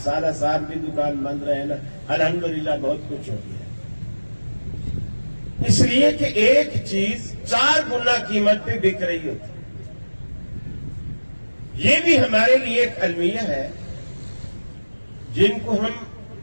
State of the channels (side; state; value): both; inverted; correlation -1.00